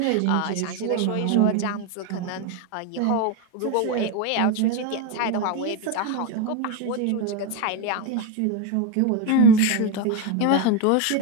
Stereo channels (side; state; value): both; different; correlation 0.03